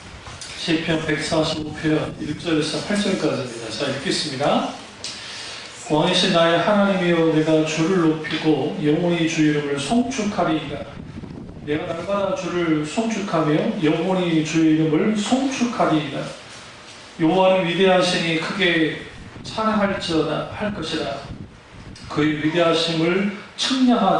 시편 145편 1절에서 8절까지입니다. 자, 읽겠습니다. 왕이신 나의 하나님이여, 내가 주를 높이고 영원히 주 이름을 송축하리이다. 내가 날마다 주를 송축하며 영원히 주 이름을 송축하리이다. 여호와는 위대하시니 크게 찬양할지어다 할 것이라. 그의 위대하심을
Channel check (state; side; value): identical; both; correlation 1.00